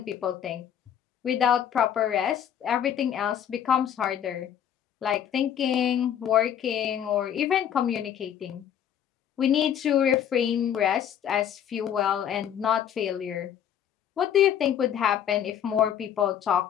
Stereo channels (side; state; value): right; quieter; 9.4 dB